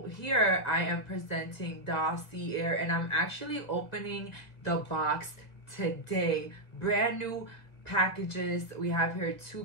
here I am presenting dossier, and I'm actually opening the box today. Brand new packages. We have here two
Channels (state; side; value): late; right; 2.0 ms